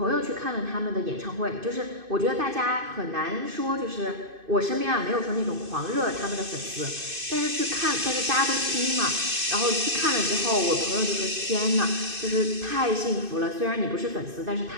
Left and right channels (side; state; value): left; late; 2.5 ms